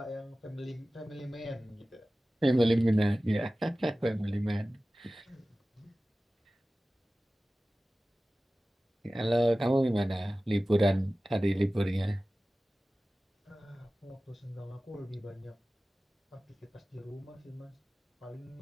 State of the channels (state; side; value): normal; both; correlation 0.96